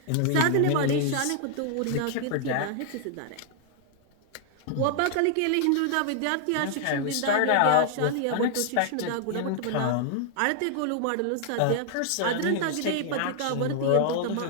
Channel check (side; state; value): both; different; correlation 0.00